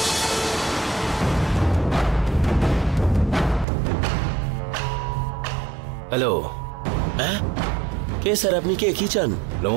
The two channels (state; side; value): drops out; left; at 3.7 s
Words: হ্যালো। হ্যাঁ, কে স্যার? আপনি কে? কি চান?